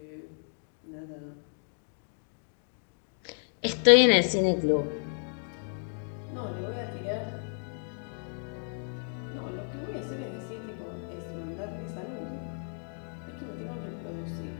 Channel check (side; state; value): right; silent; 56 dB below the other